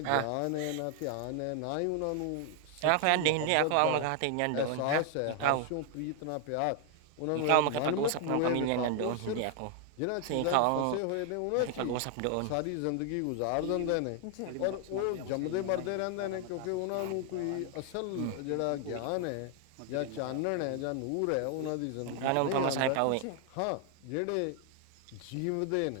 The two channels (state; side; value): different; both; correlation 0.00